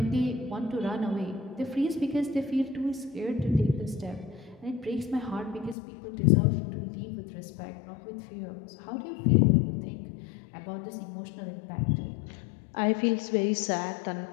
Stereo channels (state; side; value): drops out; right; at 5.8 s